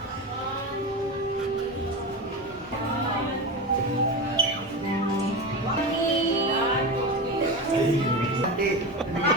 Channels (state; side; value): normal; both; correlation 0.22